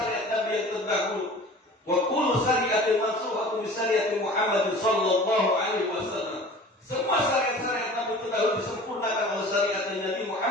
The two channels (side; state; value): both; normal; correlation 0.42